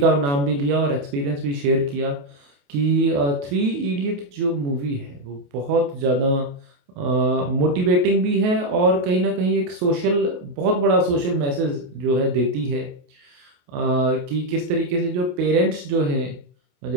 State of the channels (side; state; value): left; late; 28 ms